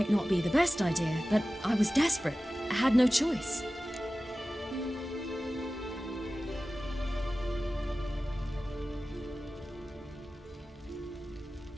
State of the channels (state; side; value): normal; both; correlation 0.95